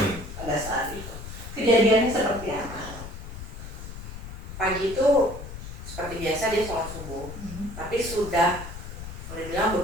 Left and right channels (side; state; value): left; noise; rumble, 10 dB below the sound